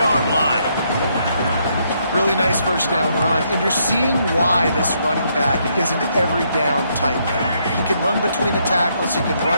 line. Really nice first down run, and you're seeing why this running back is an every down type. He can run between the tackles, he can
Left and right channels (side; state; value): both; inverted; correlation -0.74